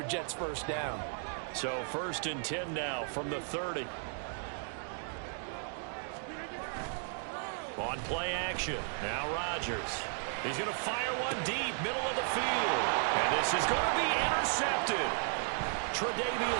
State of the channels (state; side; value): silent; left; 55 dB below the other